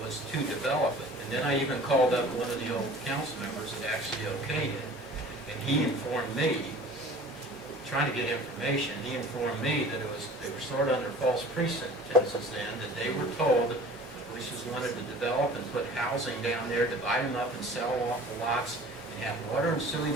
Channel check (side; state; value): left; noise; hum, 25 dB below the sound